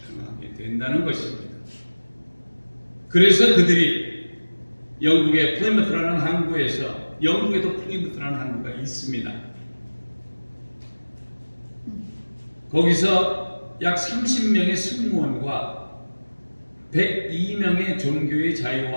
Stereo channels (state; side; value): inverted; both; correlation -1.00